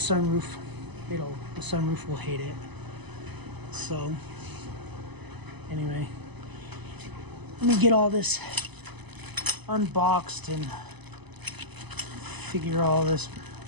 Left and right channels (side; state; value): left; late; 0.99 ms